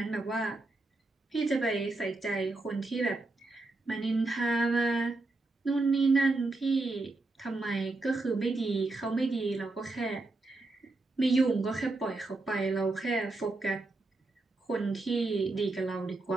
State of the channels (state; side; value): quieter; left; 3.2 dB